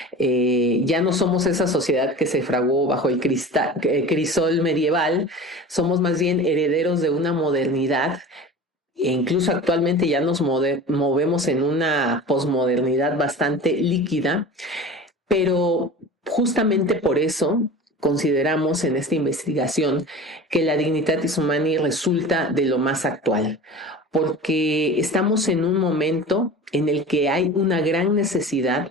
ya no somos esa sociedad que se fraguó bajo el crisol medieval, somos más bien herederos de una modernidad e incluso actualmente ya nos movemos en una posmodernidad bastante líquida, pero justamente por eso consideramos en esta investigación que la Dignitatis Humanae resulta de lo más actual, porque estamos en un momento en el que hay una gran necesidad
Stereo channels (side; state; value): both; normal; correlation 0.36